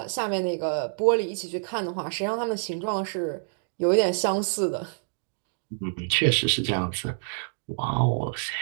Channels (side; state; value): left; silent; digital silence